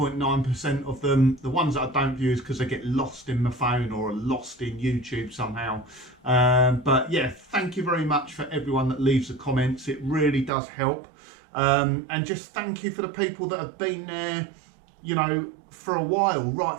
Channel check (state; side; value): drops out; left; at 10.5 s